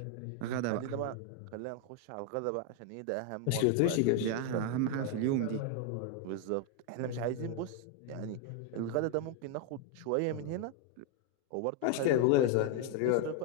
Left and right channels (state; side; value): different; both; correlation 0.01